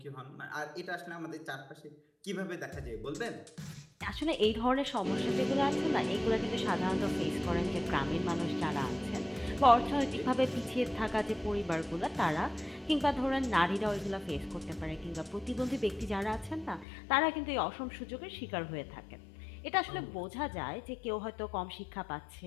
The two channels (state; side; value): drops out; right; at 16.9 s